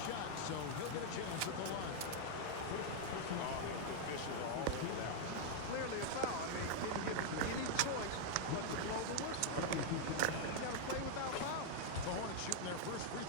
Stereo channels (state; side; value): different; both; correlation 0.00